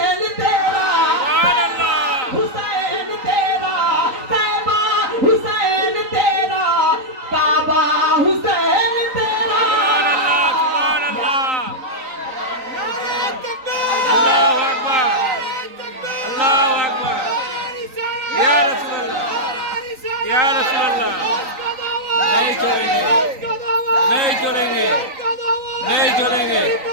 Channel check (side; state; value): left; late; 3.9 ms